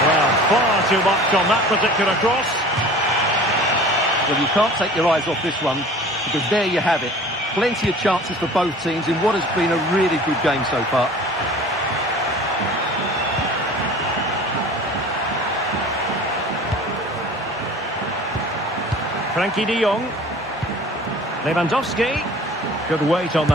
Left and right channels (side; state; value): both; normal; correlation 0.43